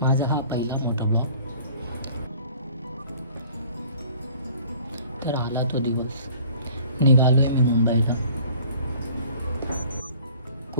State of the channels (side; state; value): both; inverted; correlation -0.50